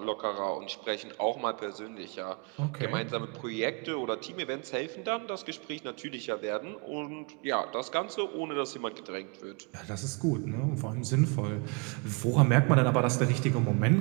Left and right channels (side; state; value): left; quieter; 33.2 dB